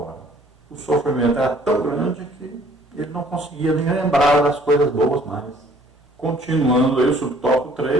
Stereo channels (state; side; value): normal; both; correlation 0.57